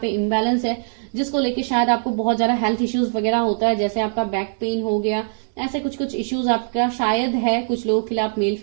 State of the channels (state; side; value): silent; left; 65 dB below the other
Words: पे इम्बैलेंस है, जिसको लेके शायद आपको बहुत ज्यादा हेल्थ इश्यूज वगैरह होता है, जैसे आपका बैक पेन हो गया, ऐसे कुछ कुछ इश्यूज आपका शायद है। कुछ लोगों के लिए आप मेल